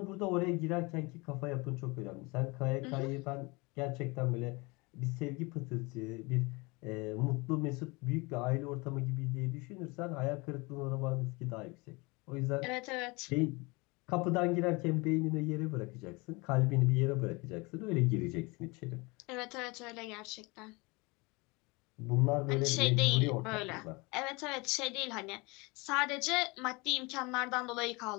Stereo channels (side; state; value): right; quieter; 26.3 dB